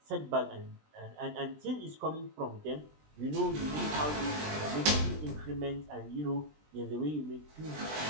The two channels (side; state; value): left; late; 20 ms